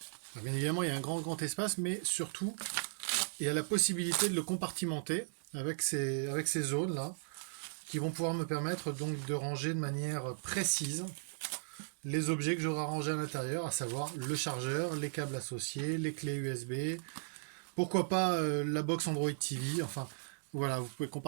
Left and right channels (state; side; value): silent; left; digital silence